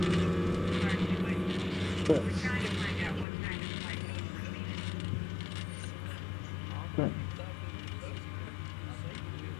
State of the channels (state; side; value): drops out; right; at 3.2 s